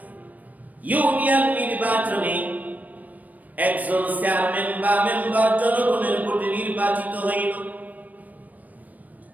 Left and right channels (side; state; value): left; late; 0.077 ms